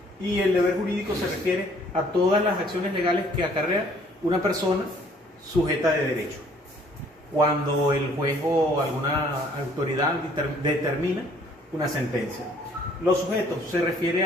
y el deber jurídico se refiere a todas las acciones legales que acarrea una persona sujeta de derecho. Cuando el juez o alguna autoridad determina una sentencia. Los sujetos se refiere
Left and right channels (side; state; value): both; normal; correlation 0.60